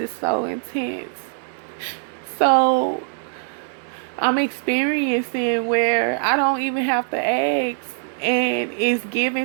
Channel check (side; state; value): left; silent; 64 dB below the other